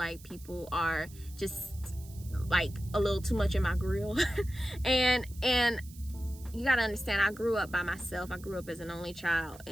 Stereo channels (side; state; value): right; noise; hiss, 21 dB below the sound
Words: people are just like a little too much in my grill. and you got to understand, I grew up by myself. I grew up as an only child.